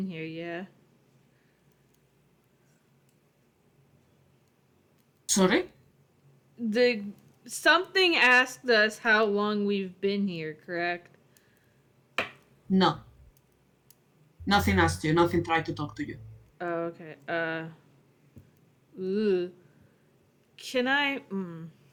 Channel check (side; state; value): both; identical; correlation 1.00